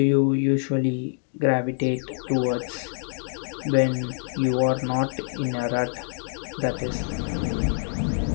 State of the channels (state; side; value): silent; right; digital silence